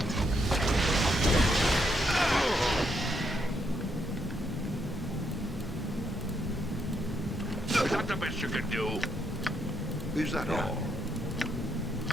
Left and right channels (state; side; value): normal; both; correlation 0.77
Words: Is that the best you can do? Is that all?